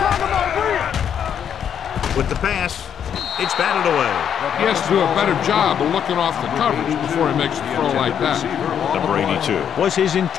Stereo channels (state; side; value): quieter; right; 8.6 dB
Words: about Reed. With the pass, it's batted away. He has to do a better job of looking off the coverage before he makes a throw like that. Number 82 was his